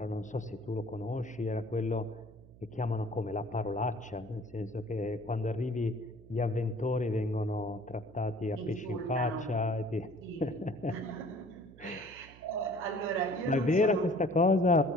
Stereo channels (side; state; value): right; noise; hum, 21 dB below the sound